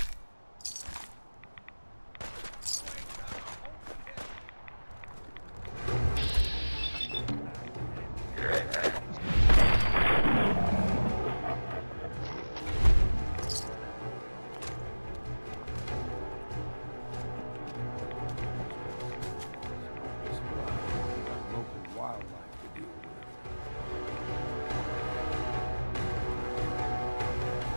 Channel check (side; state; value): both; inverted; correlation -1.00